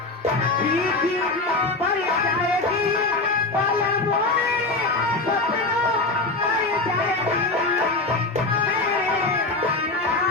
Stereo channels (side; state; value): right; quieter; 3.2 dB